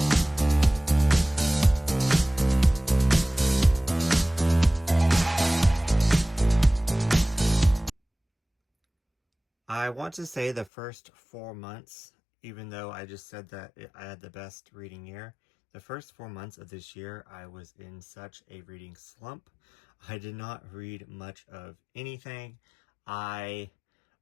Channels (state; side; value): drops out; right; at 10.7 s